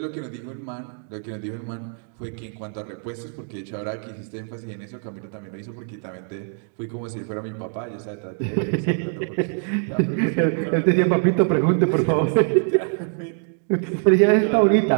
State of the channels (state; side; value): silent; left; 56 dB below the other